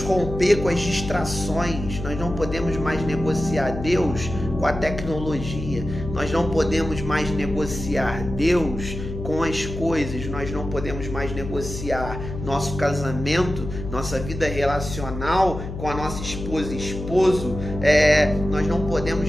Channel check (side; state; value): left; noise; hum, 8 dB below the sound